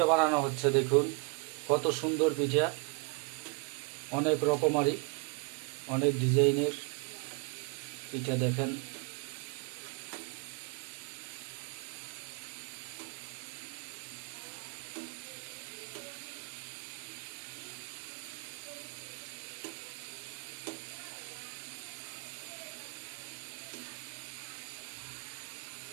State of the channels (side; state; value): left; quieter; 31.8 dB